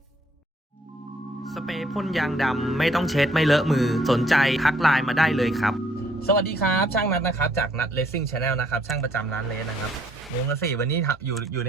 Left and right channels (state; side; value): normal; both; correlation 0.65